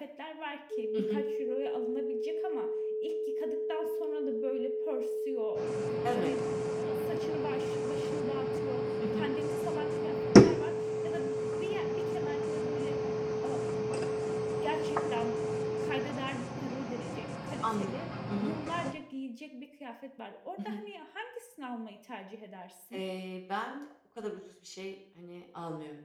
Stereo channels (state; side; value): identical; both; correlation 1.00